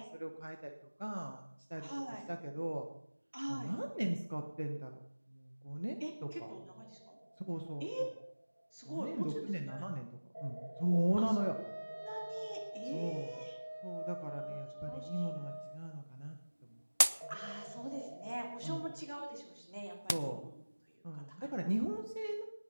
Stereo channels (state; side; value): inverted; both; correlation -1.00